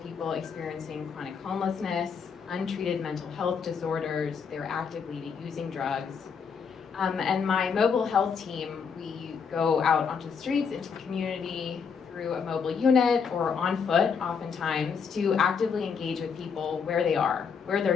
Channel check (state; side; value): quieter; right; 6.1 dB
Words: people experiencing chronic homelessness, untreated mental health disorders, they're actively using drugs. And my mobile health team, we go out onto the streets, into the community, through a mobile unit or on foot oftentimes, to actively engage with people where they are, where